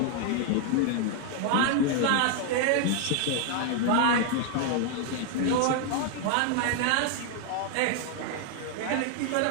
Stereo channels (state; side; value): different; both; correlation 0.00